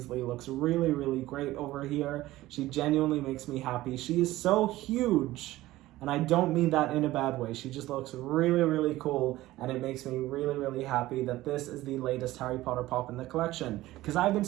looks really, really great over here. She genuinely makes me happy. She is so huge. And I don't mean that in a bad way. She just looks really, really cool. And it makes me really, really happy that this is the latest Harry Potter pop in the collection. Because I've been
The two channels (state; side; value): quieter; left; 16.7 dB